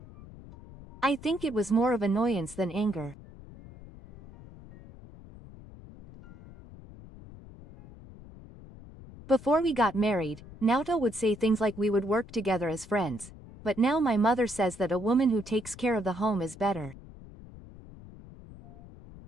I think it was more of annoyance than anger. Before we got married, Naoto would say things like we would work together as friends, but now my mother says that a woman who takes care of the home is better.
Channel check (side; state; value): left; noise; rumble, 18 dB below the sound